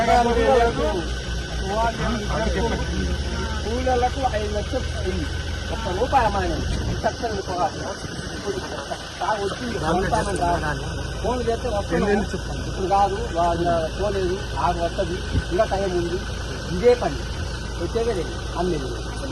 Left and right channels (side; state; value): both; identical; correlation 1.00